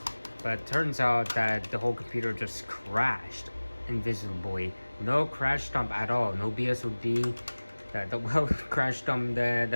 but it turns out that the whole computer just crashed invisibly. No crash dump at all, no BSOD. The crash dump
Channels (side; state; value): both; inverted; correlation -1.00